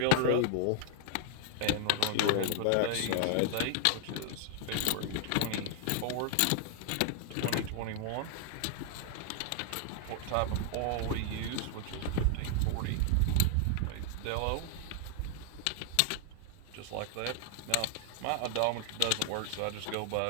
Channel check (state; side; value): different; both; correlation 0.00